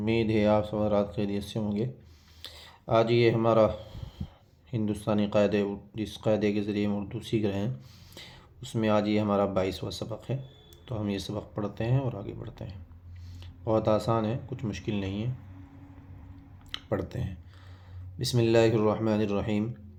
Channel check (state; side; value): identical; both; correlation 1.00